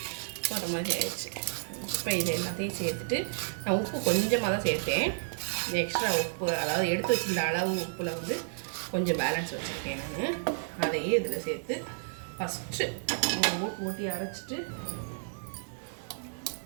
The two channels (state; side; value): silent; left; digital silence